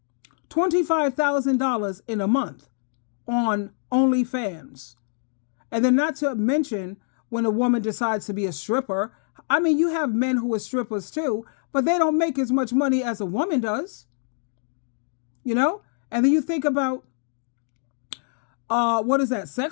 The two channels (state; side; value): silent; right; digital silence